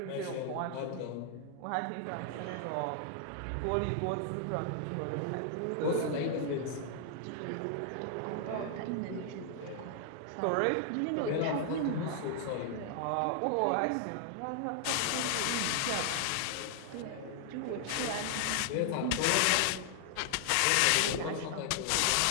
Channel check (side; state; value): both; different; correlation 0.00